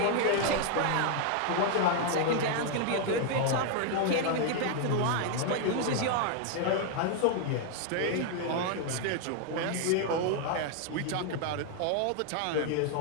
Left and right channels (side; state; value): both; different; correlation 0.00